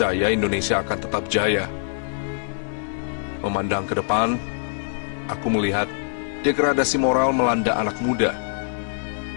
Indonesia akan tetap jaya. Memandang ke depan, aku melihat degradasi moral melanda anak muda.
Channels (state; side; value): silent; right; digital silence